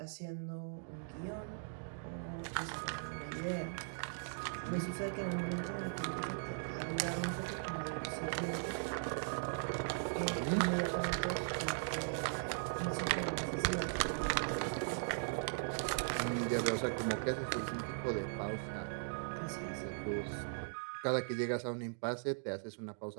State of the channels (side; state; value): left; silent; digital silence